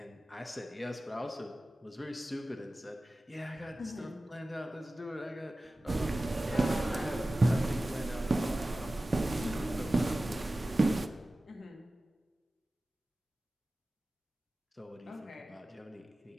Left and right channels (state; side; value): normal; both; correlation 0.96